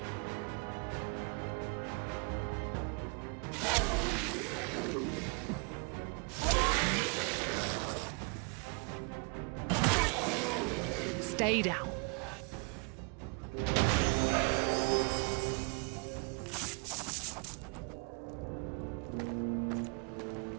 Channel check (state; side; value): quieter; left; 35.4 dB